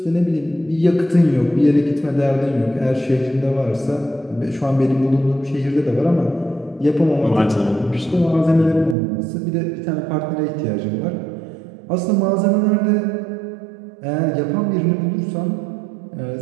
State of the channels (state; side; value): drops out; left; at 9.0 s